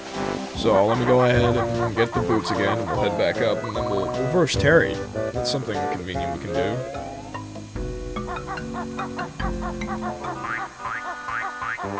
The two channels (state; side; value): identical; both; correlation 1.00